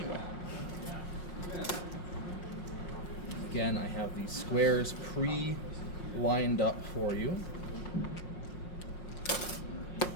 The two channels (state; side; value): late; right; 5.5 ms